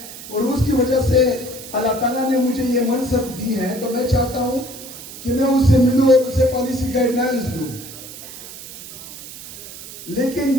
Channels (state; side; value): noise; right; hiss, 14 dB below the sound